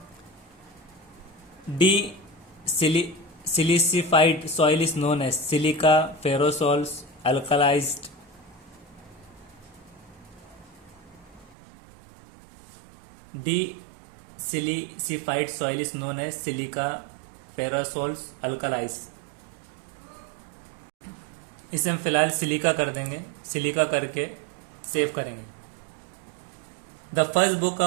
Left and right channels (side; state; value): left; drops out; at 11.6 s